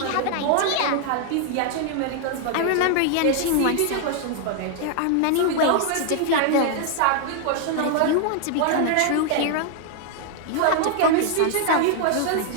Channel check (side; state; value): both; different; correlation 0.00